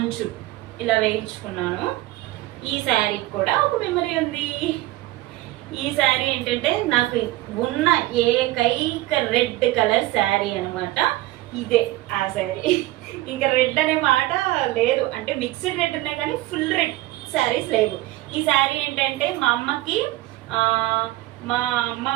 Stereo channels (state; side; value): quieter; left; 17.5 dB